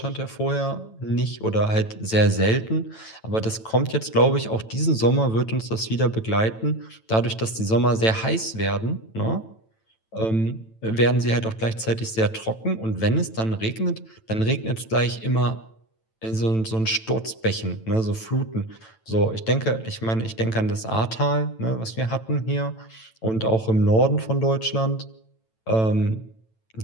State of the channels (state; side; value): late; right; 9.0 ms